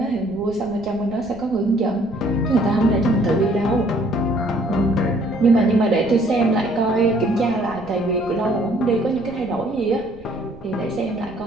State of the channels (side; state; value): right; noise; rumble, 21 dB below the sound